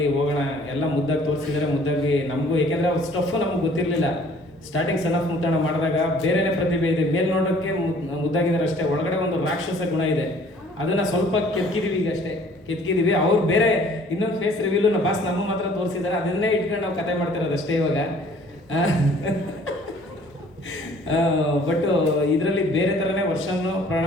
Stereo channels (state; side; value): normal; both; correlation 0.55